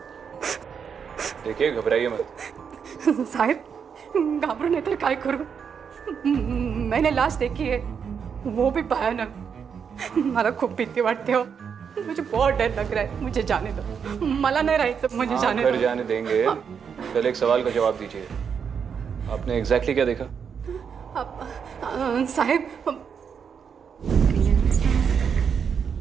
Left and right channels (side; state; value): left; quieter; 6.9 dB